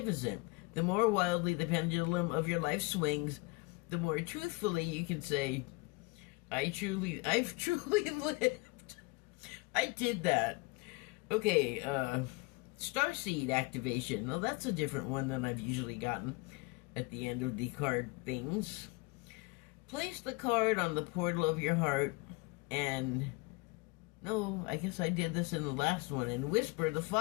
The more wildly the pendulum of your life swings, the more truthfully you can say, I've truly lived. I did that. Okay, Starseed activation. Well, that's a different one than I've usually gotten at the end of the card things. Place the card on the portal of your heart and... No, I guess I did this in the last one, and whisper the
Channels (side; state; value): right; quieter; 25.8 dB